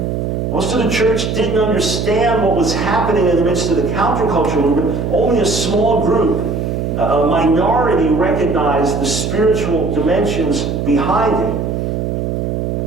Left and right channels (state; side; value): noise; right; hum, 2 dB below the sound